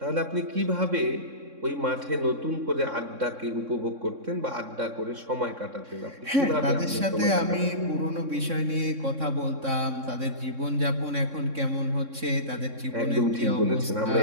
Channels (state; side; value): late; left; 3.6 ms